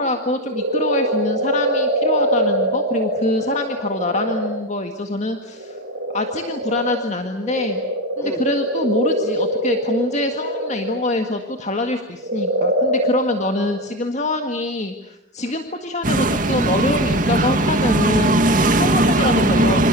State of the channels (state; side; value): normal; both; correlation 0.20